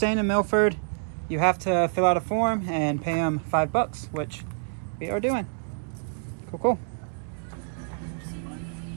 in Milford, you have to fill out a form and pay them $5, which we are doing. Cool, cool.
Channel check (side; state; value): left; silent; digital silence